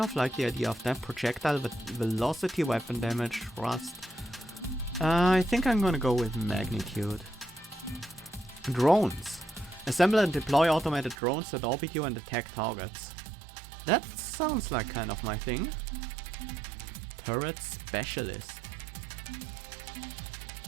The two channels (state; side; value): drops out; left; at 11.2 s